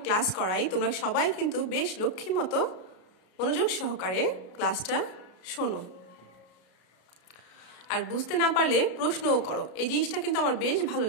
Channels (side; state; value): right; late; 33 ms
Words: ক্লাস করাই, তোমরা সবাই কিন্তু বেশ লক্ষ্মী মতো মনোযোগ সহকারে ক্লাসটা শোনো, আর বুঝতে না পারলে প্রশ্নও করো। এই জিনিসটা কিন্তু আমার বেশ ভালো